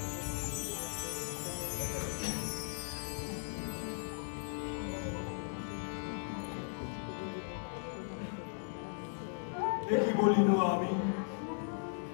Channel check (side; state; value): right; silent; digital silence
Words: একই বলিল আমি,